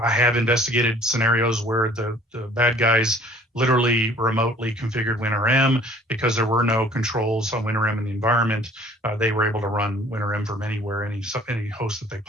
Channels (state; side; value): normal; both; correlation 0.53